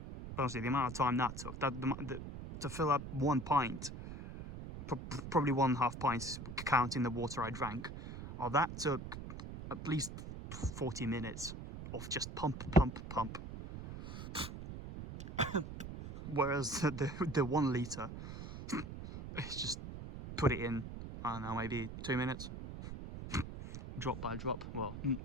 Honestly, the amount of time that took, to fill up 1 pint, probably 1.5 pints counting the water I drank, that took at least 40 minutes of just pump. Whereas the 1 litre, it's just put it in, I don't know, maybe 2 minutes, drop by drop. Well,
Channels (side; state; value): right; noise; rumble, 9 dB below the sound